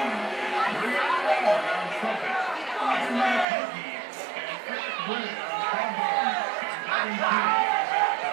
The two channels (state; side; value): drops out; left; at 3.5 s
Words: Brianna Ward on trumpet, Anna McCarthy, and Eric Brennan on trombone, and Devin Key on